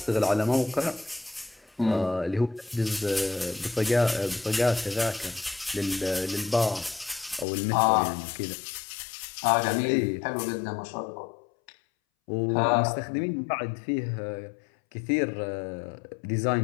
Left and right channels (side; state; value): right; drops out; at 7.5 s